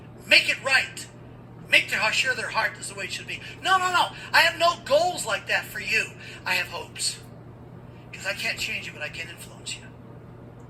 make it right, make sure their heart is the way it should be. No. I have no goals like that for you. I have hopes. Because I can't change you, but I can influence you.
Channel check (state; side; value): identical; both; correlation 1.00